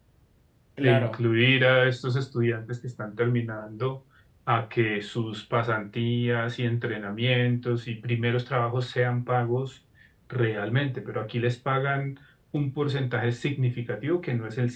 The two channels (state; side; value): identical; both; correlation 1.00